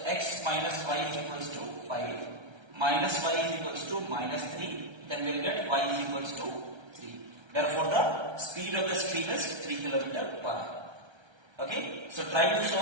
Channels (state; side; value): late; left; 1.3 ms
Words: x minus y is equals to 5, minus y is equals to minus 3, then we'll get y is equals to 3. Therefore, the speed of the stream is 3 km per hour. Okay, so try to